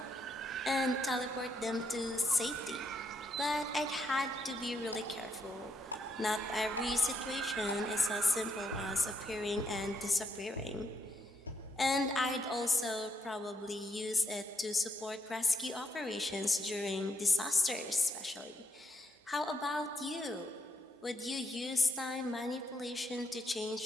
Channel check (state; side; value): normal; both; correlation 0.76